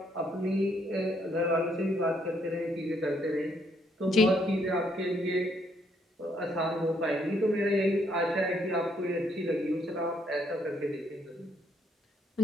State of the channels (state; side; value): normal; both; correlation 0.71